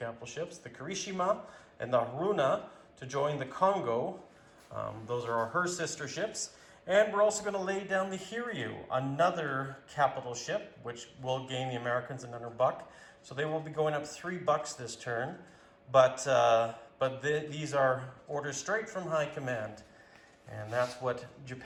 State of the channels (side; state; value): both; identical; correlation 1.00